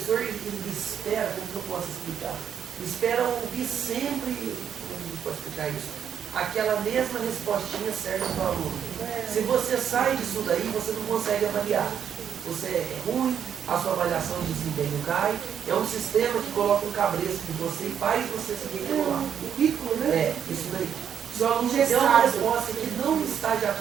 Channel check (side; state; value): left; quieter; 8.4 dB